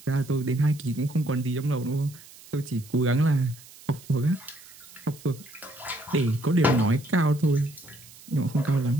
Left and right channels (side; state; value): right; noise; hiss, 21 dB below the sound